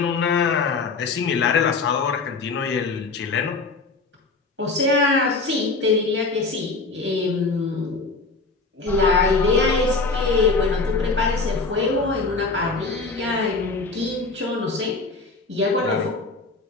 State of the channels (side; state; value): right; quieter; 3.9 dB